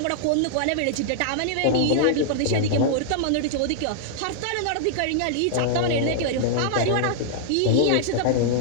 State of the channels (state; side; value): different; both; correlation -0.01